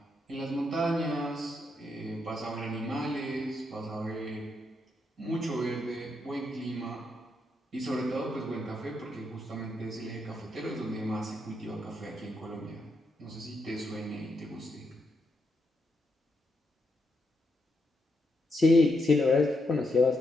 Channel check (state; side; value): normal; both; correlation 0.80